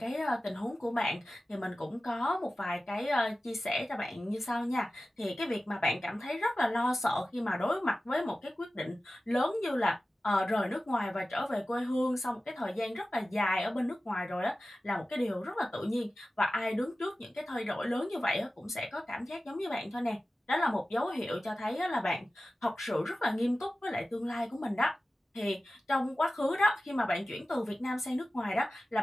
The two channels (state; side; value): normal; both; correlation 0.95